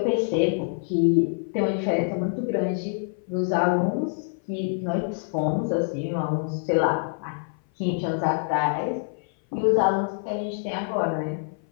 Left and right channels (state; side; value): silent; right; 57 dB below the other